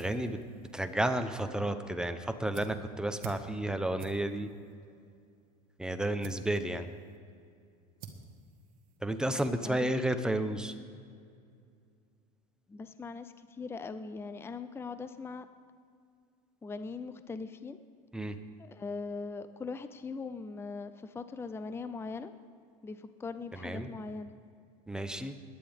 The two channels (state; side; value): normal; both; correlation 0.80